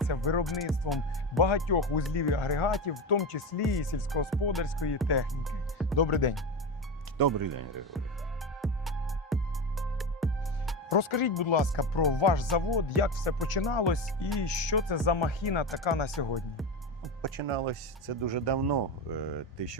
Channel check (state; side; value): normal; both; correlation 0.19